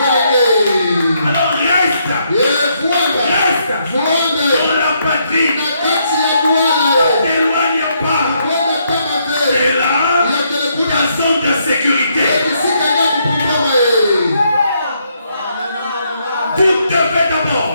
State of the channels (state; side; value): inverted; both; correlation -0.75